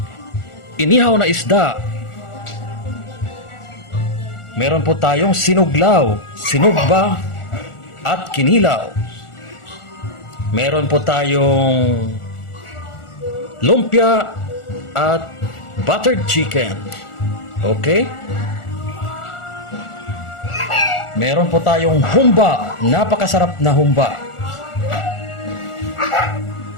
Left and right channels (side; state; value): right; late; 1.4 ms